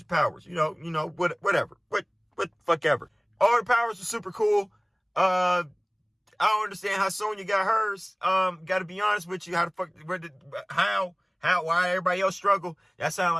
powers. You know, whatever. What fuck ever. All the powers are super cool. I don't understand how Sonya got hers. Gotta be honest with you. Why everybody else struggle? That sound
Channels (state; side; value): identical; both; correlation 1.00